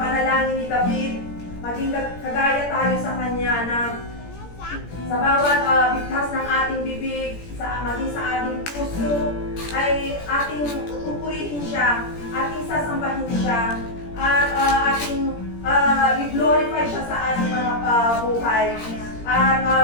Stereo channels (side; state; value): right; late; 17 ms